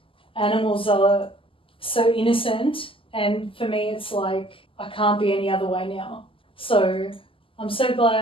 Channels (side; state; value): right; late; 0.25 ms